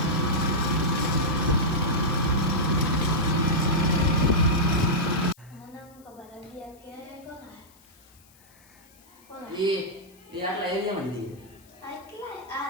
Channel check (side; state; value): left; noise; hiss, 28 dB below the sound